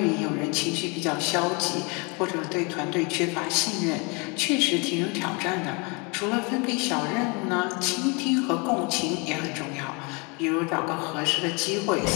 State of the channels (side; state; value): right; quieter; 30.5 dB